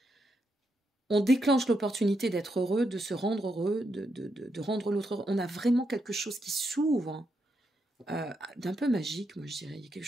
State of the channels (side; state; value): both; normal; correlation 0.81